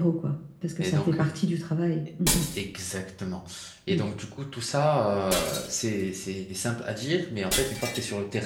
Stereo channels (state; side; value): identical; both; correlation 1.00